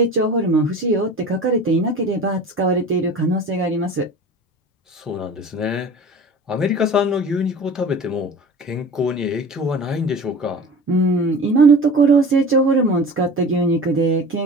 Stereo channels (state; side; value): normal; both; correlation 0.38